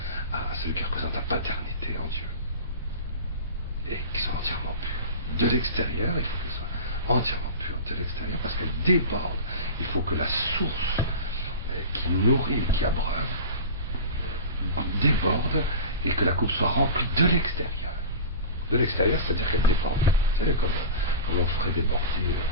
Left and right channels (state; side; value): inverted; both; correlation -0.30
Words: à celui qui représente la paternité en Dieu. Et qui sont entièrement purs. De l'extérieur, il faut qu'elle soit entièrement pure de l'extérieur, parce qu'elle déborde. Il faut que la source qui nourrit, qui abreuve, déborde, et que la coupe soit remplie de l'extérieur. De l'extérieur, c'est-à-dire qu'elle déborde. Vous savez, comme on ferait déborder,